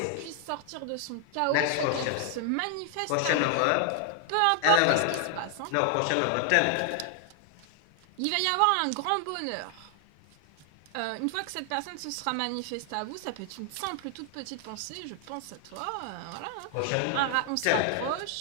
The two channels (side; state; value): both; different; correlation 0.00